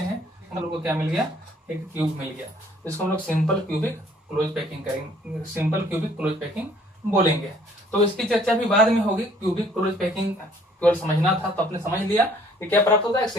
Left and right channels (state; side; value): normal; both; correlation 0.59